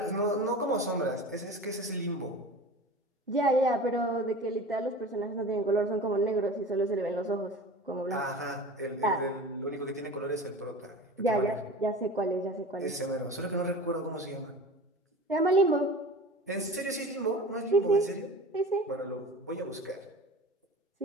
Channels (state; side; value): normal; both; correlation 0.36